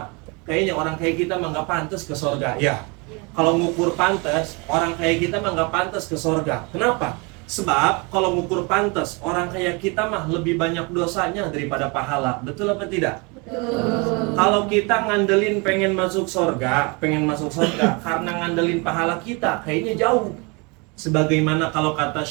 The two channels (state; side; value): quieter; left; 29.7 dB